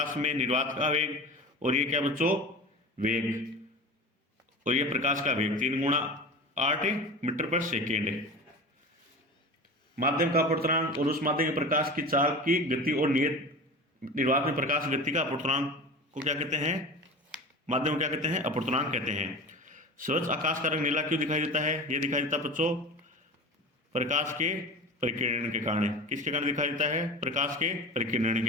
में निर्वात का वेग, और ये क्या बच्चों, वेग, और ये प्रकाश का वेग 3 × 8 मीटर/सेकेंड। माध्यम का अपूर्णांक और उस माध्यम के प्रकाश की चाल की गति और नियत निर्वात में प्रकाश गति का अपूर्णांक को क्या कहते हैं, माध्यम को क्या कहते हैं, अपूर्णांक कहते हैं। स्वच्छ आकाश का रंग नीला क्यों दिखाई देता है, यह दिखाई देता है बच्चों प्रकाश के परिकिरण के कारण। किसके कारण दिखाई देता है, प्रकाश के परिकिरण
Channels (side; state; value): both; normal; correlation 0.32